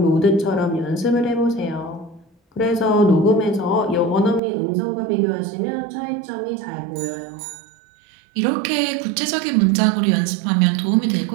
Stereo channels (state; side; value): drops out; left; at 4.4 s